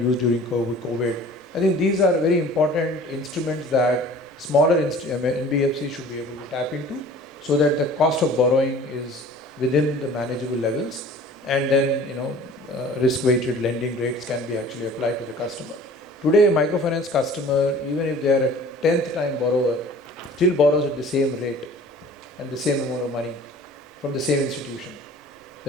during COVID. I think these are very important instruments that smaller NBFCs should be able to tap into, so that the cost of borrowing is within the manageable levels, and then risk-weighted lending rates can be actually applied to the customer. Today, a microfinance customer, even if they are a 10th time borrower, still borrows at the same rate and the same amount of money from the same institution.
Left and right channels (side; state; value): both; normal; correlation 0.47